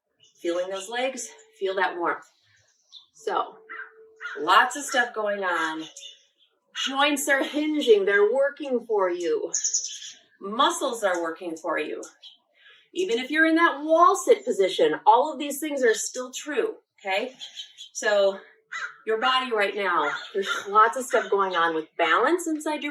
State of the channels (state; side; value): identical; both; correlation 1.00